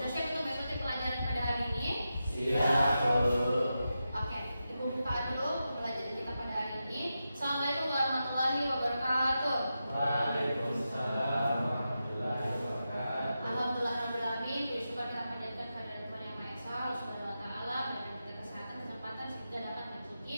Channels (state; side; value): inverted; both; correlation -0.90